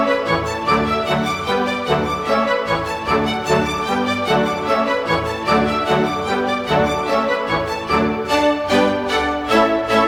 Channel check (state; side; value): identical; both; correlation 1.00